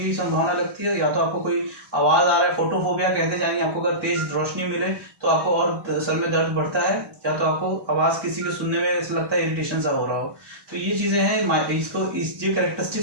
संभावना लगती है, या तो आपको कोई आवाज आ रहा है, फोटोफोबिया कहते जाएंगे, आपको अगर तेज रोशनी मिले तो आपको और सर में दर्द बढ़ता है, या तो आपको आवाज किसी के सुनने में ऐसा लगता है इरिटेशन सा हो रहा हो। तो ये चीजें हैं, ये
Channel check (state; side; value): late; left; 1.1 ms